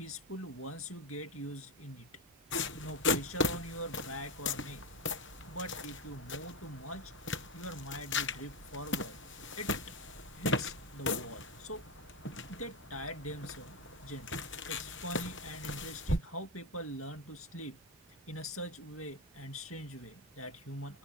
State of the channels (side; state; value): both; normal; correlation 0.13